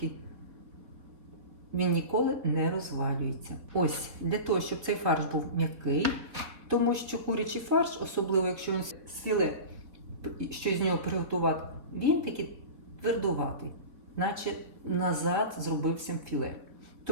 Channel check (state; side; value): late; left; 4.2 ms